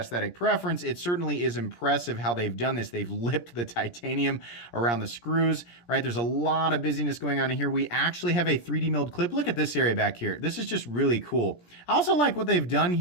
preference, it certainly is impressive how they've done this. They've lipped the titanium around the screws, right? There's a lot of busyness going on in here. We actually have a 3D milled clip. Look at this area back here. This is just really cool. I also like what they've done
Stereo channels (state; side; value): late; right; 17 ms